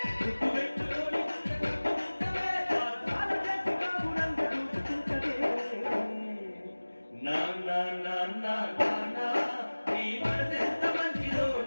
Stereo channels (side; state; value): both; inverted; correlation -1.00